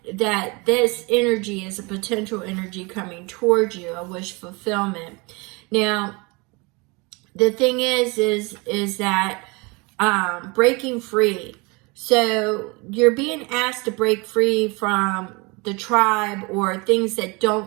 this energy is a potential energy coming towards you, a wish fulfillment. Now, the thing is that breaking free. So you're being asked to break free from the tribe or things that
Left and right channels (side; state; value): left; quieter; 27.7 dB